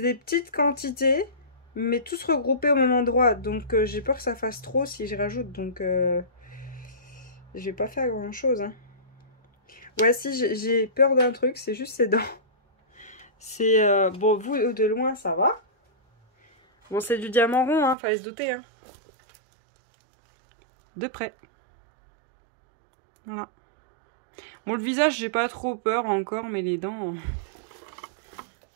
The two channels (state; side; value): drops out; left; at 17.9 s